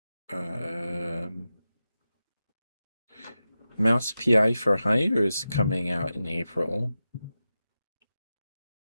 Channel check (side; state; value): both; inverted; correlation -0.91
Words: Mouse PI for Hire is coming out in April.